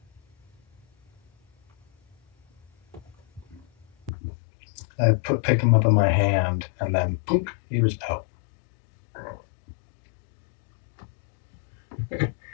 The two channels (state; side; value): drops out; right; at 4.1 s